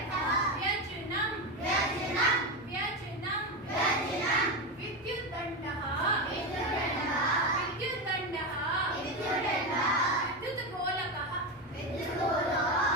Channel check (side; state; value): left; noise; hum, 26 dB below the sound